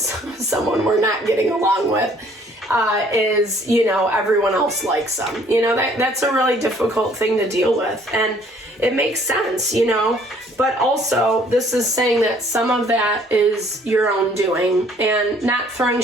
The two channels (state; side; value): normal; both; correlation 0.59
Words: we're not getting along with is, you know, everyone else likes them. You know, that's a really difficult thing to deal with. And it makes sense, you know, but also this is saying that some of that is your own doing, and not throwing